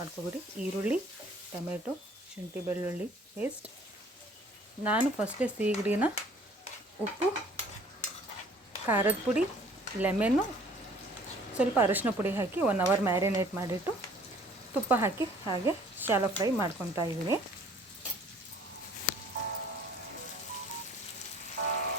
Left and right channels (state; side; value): normal; both; correlation 0.55